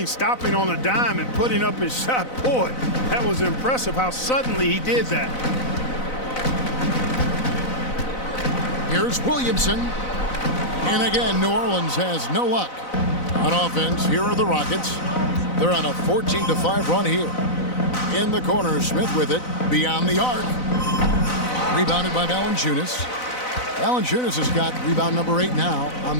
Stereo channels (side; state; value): right; late; 4.0 ms